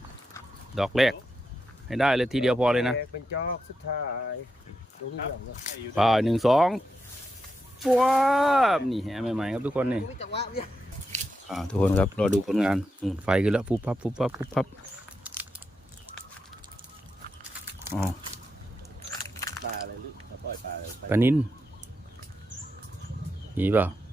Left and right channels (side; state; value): both; normal; correlation 0.85